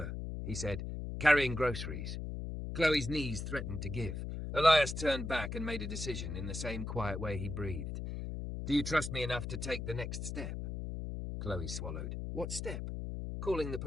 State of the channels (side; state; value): left; noise; hum, 5 dB below the sound